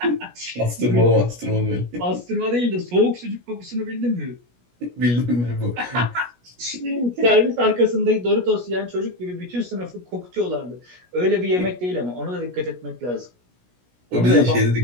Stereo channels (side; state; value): left; late; 17 ms